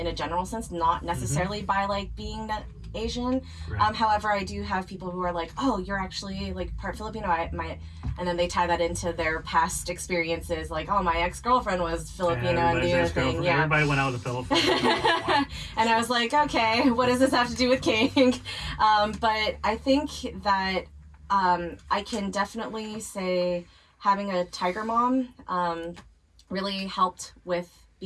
a general sense, not necessarily by like being that Asian. Right. However, I do have people who are like, oh, you're actually like part Filipino. And then they tie that into their past experiences, like, oh, my ex-girlfriend was Filipino and the other thing. Yeah. Everybody went out to the Philippines. And I was like, okay, what does this have to do with king? But I think that I can definitely say having a tiger mom really helped with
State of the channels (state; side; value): identical; both; correlation 1.00